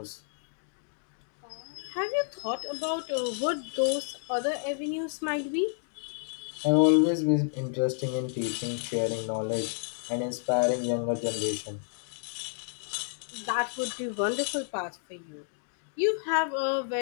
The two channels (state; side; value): silent; right; digital silence